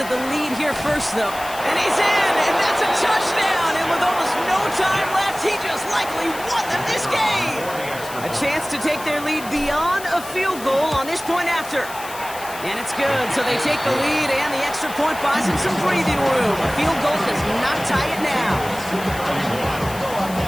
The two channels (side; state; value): left; noise; hiss, 14 dB below the sound